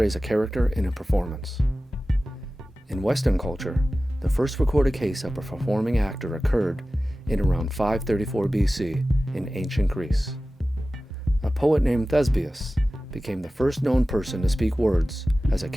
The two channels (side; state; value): both; normal; correlation 0.96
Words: a character in a performance. In Western culture, the first recorded case of a performing actor occurred in around 534 BC in ancient Greece. A poet named Thespius became the first known person to speak words as a